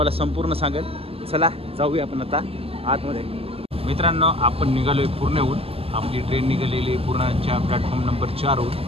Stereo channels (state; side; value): late; left; 0.28 ms